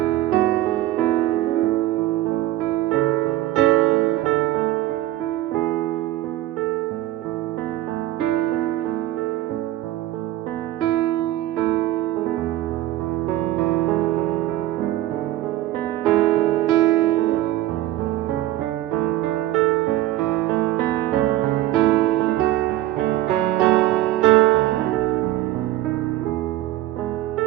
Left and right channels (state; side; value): quieter; left; 15.1 dB